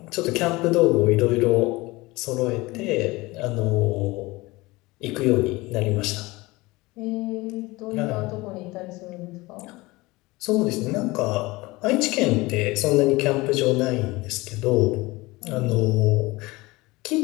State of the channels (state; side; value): quieter; right; 21.7 dB